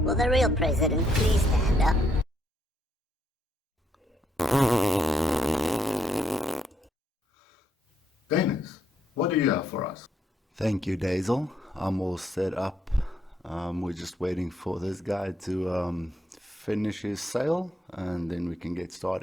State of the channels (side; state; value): both; normal; correlation 0.74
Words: the real president please stand up? Dennis, what do you have for us? Thank you, Deyzel. I'm all set up. We're just waiting for this guy to finish his sale and then we can get